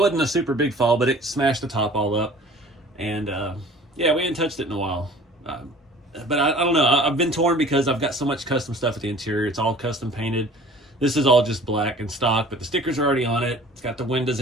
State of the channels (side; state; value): both; normal; correlation 0.47